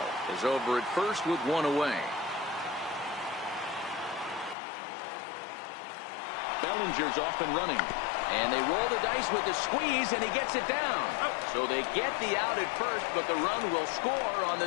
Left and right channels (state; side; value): drops out; right; at 4.5 s